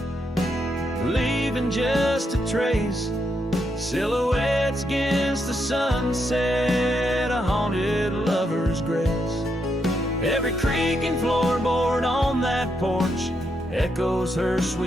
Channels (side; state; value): both; normal; correlation 0.80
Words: leaving just a trace. Silhouettes against the sunset, a haunted lover's grace. Every creak and floorboard on that porch echoes her